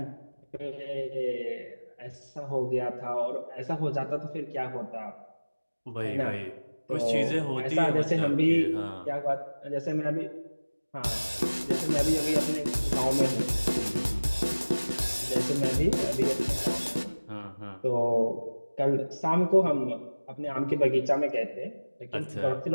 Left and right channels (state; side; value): inverted; both; correlation -1.00